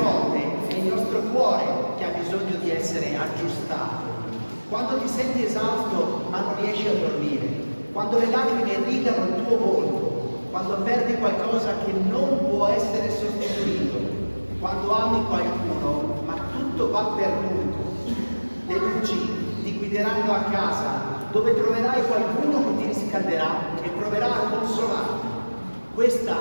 è il nostro cuore che ha bisogno di essere aggiustato. Quando ti senti esausto ma non riesci a dormire, quando le lacrime irrigano il tuo volto, quando perdi qualcosa che non può essere sostituito, quando ami qualcuno ma tutto va perduto, le luci ti guideranno a casa dove troverai qualcuno che ti riscalderà e proverà a consolarti. Questa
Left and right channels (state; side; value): inverted; both; correlation -1.00